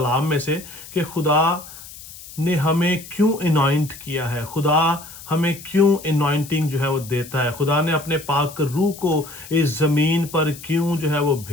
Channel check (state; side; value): noise; left; hiss, 16 dB below the sound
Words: में से कि खुदा ने हमें क्यों इनॉइंट किया है, खुदा हमें क्यों इनॉइंटिंग जो है वो देता है, खुदा ने अपने पाक रूह को इस ज़मीन पर क्यों जो है वो